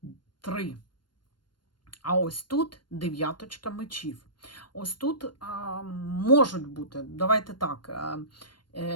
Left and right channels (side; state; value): right; late; 0.72 ms